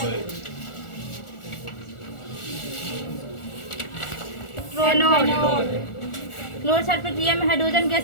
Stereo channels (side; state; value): right; late; 1.4 ms